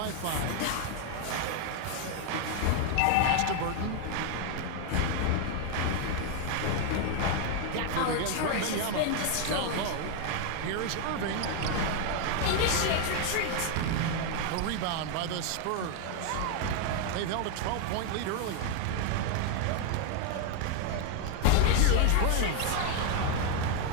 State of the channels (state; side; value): different; both; correlation 0.01